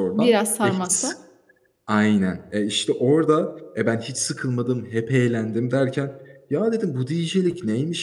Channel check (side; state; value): both; identical; correlation 1.00